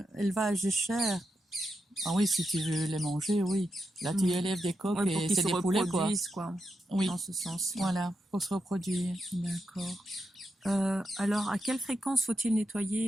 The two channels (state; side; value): normal; both; correlation 0.86